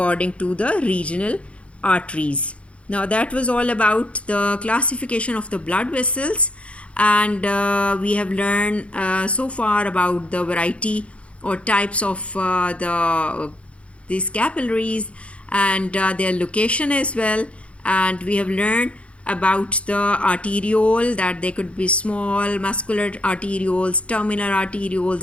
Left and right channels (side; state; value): right; late; 0.061 ms